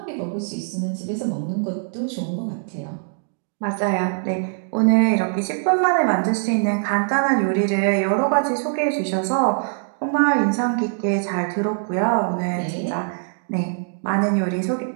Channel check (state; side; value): silent; left; digital silence